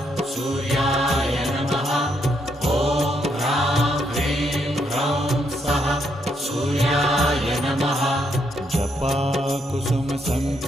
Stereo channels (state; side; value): normal; both; correlation 0.76